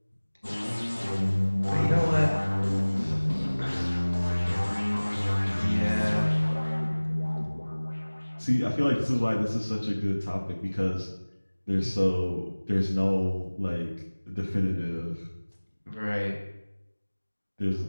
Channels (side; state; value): both; inverted; correlation -1.00